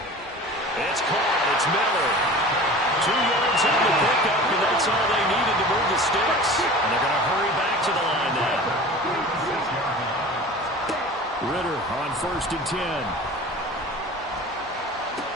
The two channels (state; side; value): normal; both; correlation 0.39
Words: It's caught, it's Miller. 2 yards on the pickup, and that's all they needed to move the sticks. And they're going to hurry back to the line now. Ritter on 1st and 10.